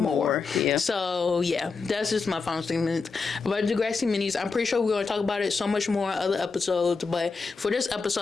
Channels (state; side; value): quieter; right; 4.6 dB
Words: more. Yeah. So yeah, that's just my final statement about Degrassi minis. I'm pretty sure we're going to talk about it so much more in other episodes, but for this